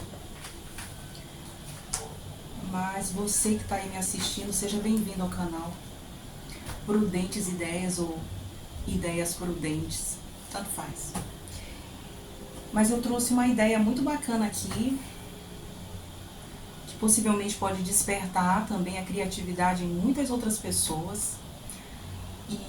Mas você que está aí me assistindo, seja bem-vindo ao canal Prudentes Ideias ou Ideias Prudentes, tanto faz. Mas eu trouxe uma ideia muito bacana aqui, que possivelmente pode despertar também a criatividade em muitas outras pessoas. E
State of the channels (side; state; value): both; identical; correlation 1.00